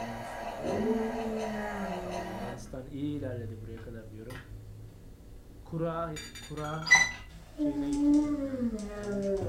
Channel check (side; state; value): both; identical; correlation 1.00